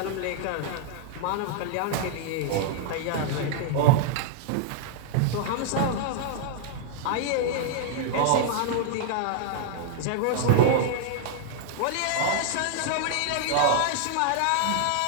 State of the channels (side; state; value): both; different; correlation 0.00